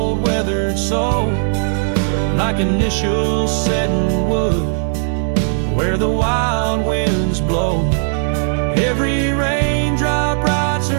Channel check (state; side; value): silent; left; digital silence